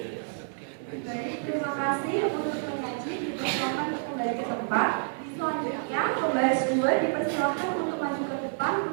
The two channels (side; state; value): left; silent; digital silence